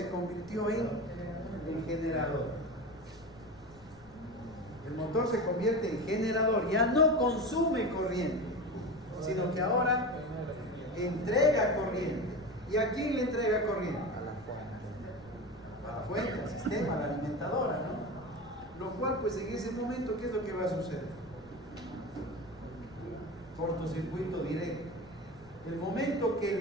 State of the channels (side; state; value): left; noise; rumble, 24 dB below the sound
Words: convirtió en generador. El motor se convierte en generador, ya no consume corriente, sino que ahora entrega corriente. ¿Y a quién le entrega corriente? A la fuente, al sistema, a la alimentadora, ¿no? Lo cual, pues en ese momento, ¿qué es lo que va a suceder? Cortocircuito directo. El momento